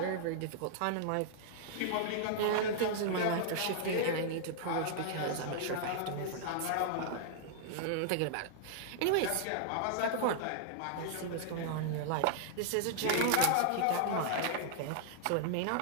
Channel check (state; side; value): different; both; correlation -0.01